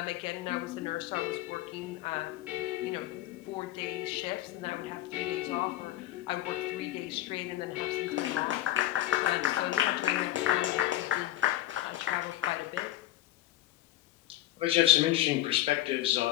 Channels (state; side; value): quieter; right; 14.4 dB